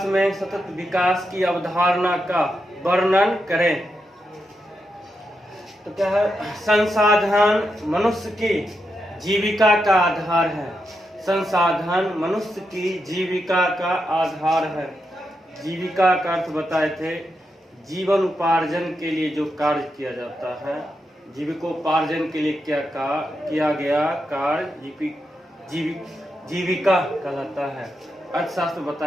में सतत विकास की अवधारणा का वर्णन करें। तो क्या है? संसाधन मनुष्य की जीविका का आधार है। संसाधन मनुष्य की जीविका का आधार है। जीविका का अर्थ बताए थे जीवन उपार्जन के लिए जो कार्य किया जाता है, जीविकोपार्जन के लिए क्या किया गया कार्य जीविका कहलाता है। अर्थशास्त्र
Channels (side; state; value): both; normal; correlation 0.85